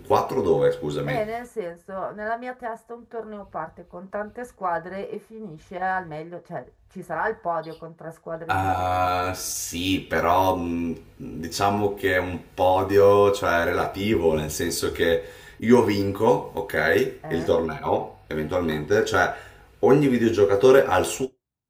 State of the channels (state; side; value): identical; both; correlation 1.00